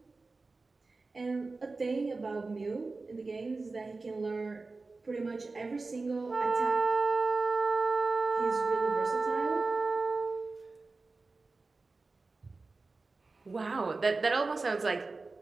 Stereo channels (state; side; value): quieter; left; 3.7 dB